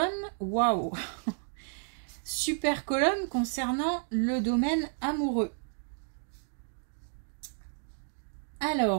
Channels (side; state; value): left; silent; digital silence